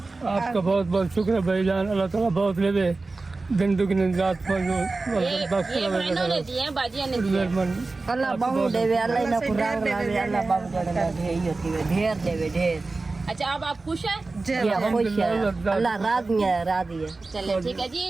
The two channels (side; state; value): left; quieter; 3.6 dB